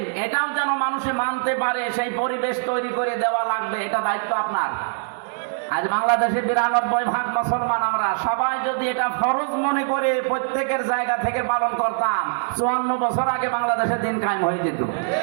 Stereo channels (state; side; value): silent; left; digital silence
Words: এটাও যেন মানুষে মানতে পারে, সেই পরিবেশ তৈরি করে দেওয়া লাগবে। এটা দায়িত্ব আপনার। আজ বাংলাদেশে 92% মুসলমান, আমরা সবাই যদি এটা ফরজ মনে করে প্রত্যেকের জায়গা থেকে পালন করতাম, 54 বছর আগে বাংলাদেশে দিন কায়েম হয়ে যেত।